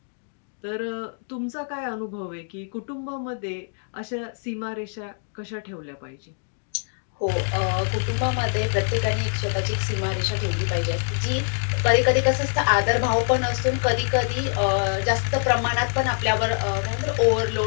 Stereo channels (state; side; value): silent; right; 62 dB below the other